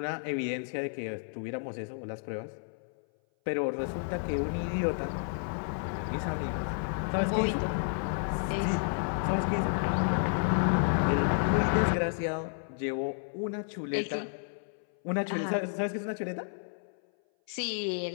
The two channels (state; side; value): silent; right; 57 dB below the other